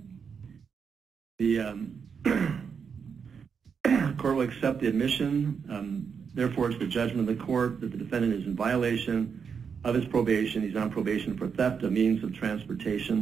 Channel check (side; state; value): left; quieter; 6.4 dB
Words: The court will accept the admission. Therefore, it's the judgment of the court that the defendant is in violation of his probation. He's on probation for theft of means of